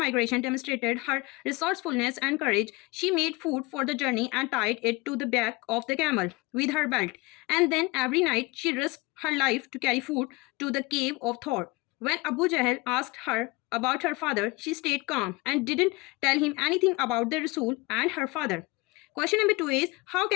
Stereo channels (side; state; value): right; quieter; 23.6 dB